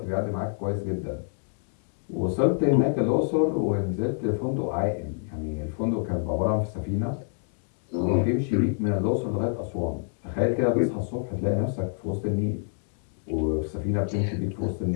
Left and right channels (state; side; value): silent; right; digital silence